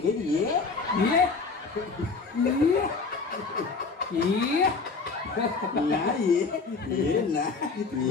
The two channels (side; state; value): right; quieter; 4.5 dB